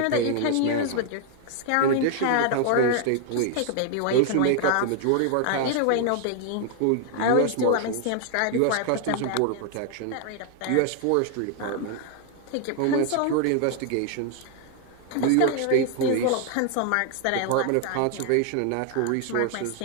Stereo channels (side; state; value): both; different; correlation 0.00